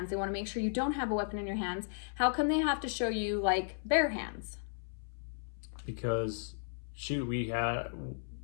They want to make sure you don't have a weapon in your hands. How come they have to show you like bare hands? Because shoot, we had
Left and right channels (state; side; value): silent; right; 54 dB below the other